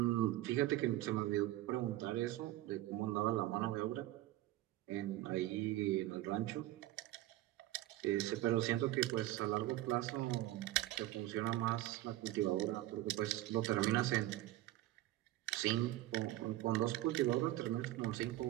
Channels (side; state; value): left; quieter; 15.7 dB